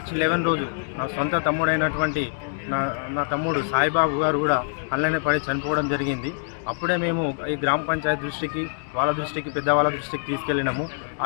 11 రోజు నా సొంత తమ్ముడైనటువంటి నా తమ్ముడు సాయిబాబు గారు కూడా అల్లనే పడి చనిపోవడం జరిగింది. అప్పుడే మేము ఈ గ్రామ పంచాయతీ దృష్టికి వాళ్ళ దృష్టికి పెద్దవాళ్ళ దృష్టికి తీసుకెళ్ళినాము.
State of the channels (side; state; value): right; silent; digital silence